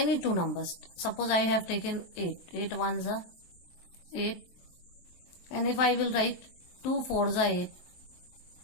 two numbers. Suppose I have taken 8. 8 1s are 8. And if I will right 2 4s are 8.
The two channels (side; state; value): right; late; 23 ms